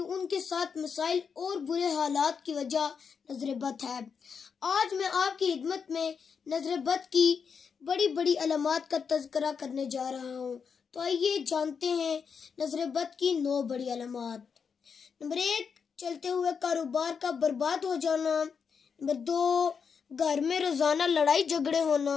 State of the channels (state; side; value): quieter; right; 6.2 dB